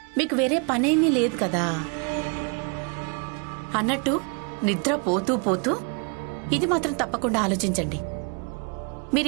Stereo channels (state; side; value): quieter; left; 35.0 dB